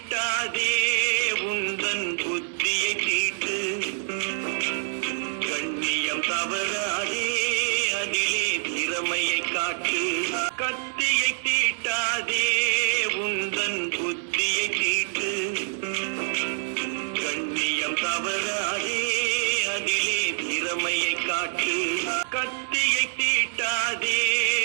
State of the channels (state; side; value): silent; left; digital silence